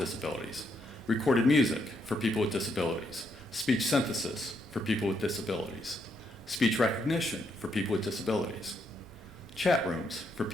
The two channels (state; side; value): normal; both; correlation 0.77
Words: Recorded music for people with disabilities, speech synthesis for people with disabilities, speech recognition for people with disabilities, chat rooms for